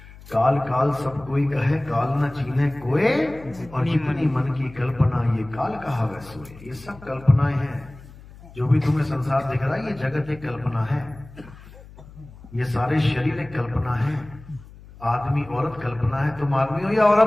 काल काल सब कोई कहे, काल न चीन्हे कोई, और जितनी मन की कल्पना ये काल कहा वै सोए। ये सब कल्पनाएं हैं। जो भी तुम्हें संसार दिख रहा है ये जगत एक कल्पना है, ये सारे शरीर एक कल्पना है। आदमी औरत कल्पना है। तुम आदमी हो या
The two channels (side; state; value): left; noise; hum, 20 dB below the sound